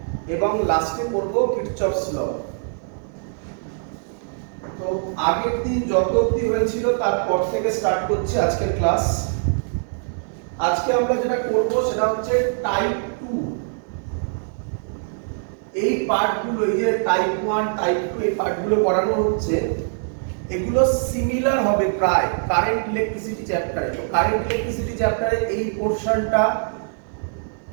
এবং লাস্টে করব কিরচফস ল। তো আগের দিন যত অবধি হয়েছিল তারপর থেকে স্টার্ট করছে আজকের ক্লাস। আজকে আমরা যেটা করব সেটা হচ্ছে টাইপ 2। এই পার্টগুলো, এই যে টাইপ 1 টাইপ 2 এই পার্টগুলো পড়ানো হচ্ছে, এগুলো সিমিলার হবে প্রায় কারেন্ট ইলেকট্রিসিটি চ্যাপ্টারে। তো কারেন্ট ইলেকট্রিসিটি চ্যাপ্টারে এই পোরশনটা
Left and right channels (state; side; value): silent; left; digital silence